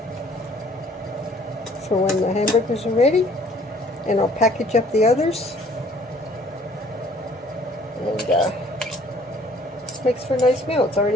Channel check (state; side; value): normal; both; correlation 0.57